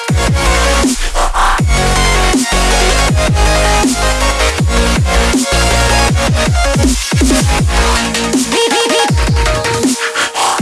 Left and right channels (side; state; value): both; identical; correlation 1.00